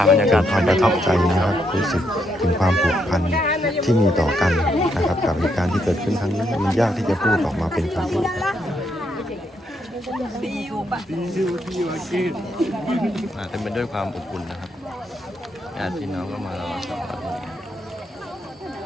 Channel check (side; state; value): both; normal; correlation 0.77